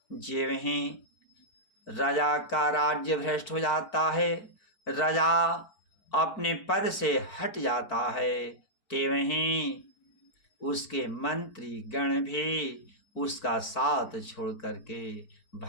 ज्यों ही राजा का राज्य भ्रष्ट हो जाता है, राजा अपने पद से हट जाता है, त्यों ही उसके मंत्री गण भी उसका साथ छोड़ करके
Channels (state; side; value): late; right; 4.5 ms